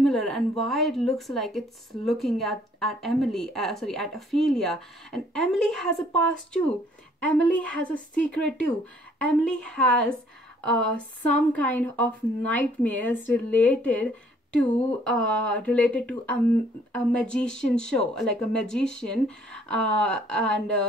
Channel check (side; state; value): both; normal; correlation 0.62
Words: and why it looks like it's looking at Emily, at Ophelia. And Emily has a past too. Emily has a secret too. Emily has some kind of nightmares related to a magician show, like a magician, and